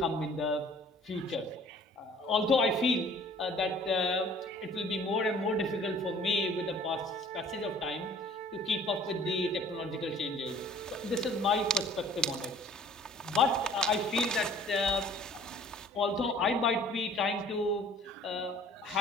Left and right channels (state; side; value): normal; both; correlation 0.52